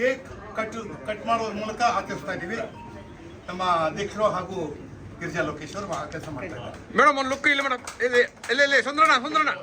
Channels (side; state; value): both; identical; correlation 1.00